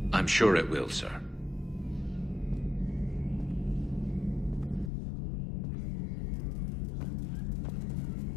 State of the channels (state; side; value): drops out; right; at 4.9 s